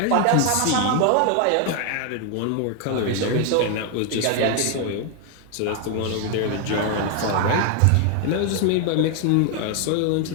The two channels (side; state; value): both; different; correlation 0.01